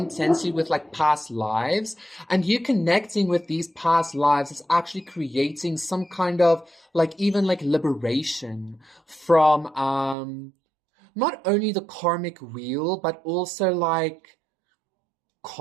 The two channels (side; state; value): left; drops out; at 10.2 s